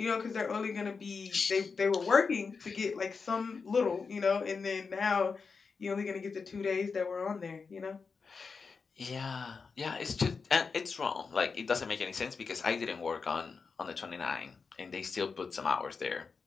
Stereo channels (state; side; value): quieter; right; 5.0 dB